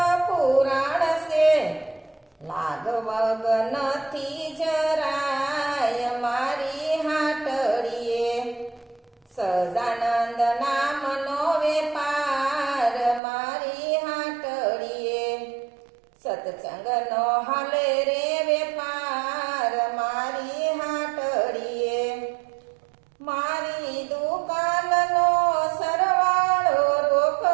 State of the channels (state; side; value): drops out; left; at 13.2 s